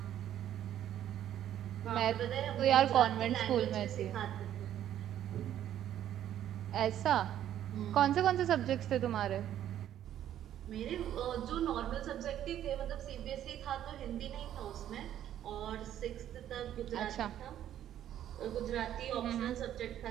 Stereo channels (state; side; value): quieter; left; 11.3 dB